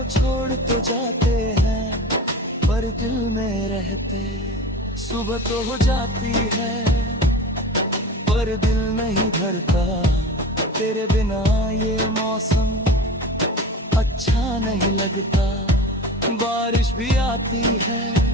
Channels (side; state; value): both; normal; correlation 0.34